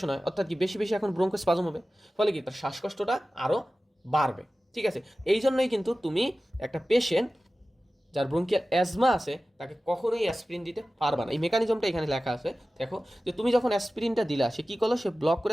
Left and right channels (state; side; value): normal; both; correlation 0.96